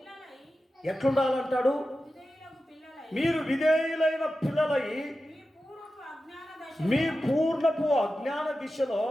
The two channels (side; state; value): both; normal; correlation 0.92